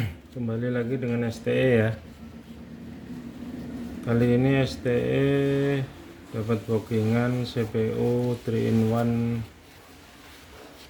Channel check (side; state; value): both; identical; correlation 1.00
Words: Kembali lagi dengan STE ya. Kali ini STE dapat bookingan CPU